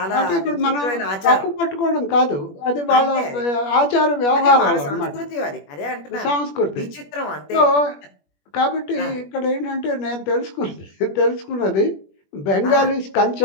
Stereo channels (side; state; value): right; late; 21 ms